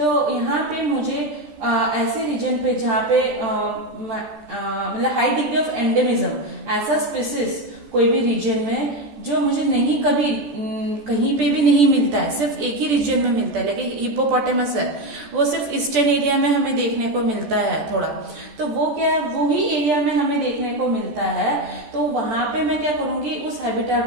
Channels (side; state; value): left; late; 14 ms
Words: यहाँ पे मुझे ऐसे रीजन पे जहाँ पे मतलब हाई डिग्री ऑफ एंडेमिज्म, ऐसा स्पीसीज कोई भी रीजन में जो मुझे नहीं कभी कहीं पे भी नहीं मिलता है, सिर्फ एक ही रीजन में मिलता है, लेकिन हिप्पोपोटामस है वो सिर्फ ईस्टर्न एरिया में हमें देखने को मिलता है थोड़ा, तो वो क्या है वो ही एरिया में हमें देखने को मिलता है, तो वहां पे मैं क्या करूंगी उस